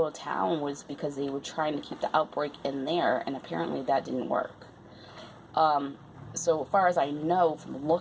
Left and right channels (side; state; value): both; identical; correlation 1.00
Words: town was because they were trying to keep the outbreak in there, and apparently that didn't work. So far as I know from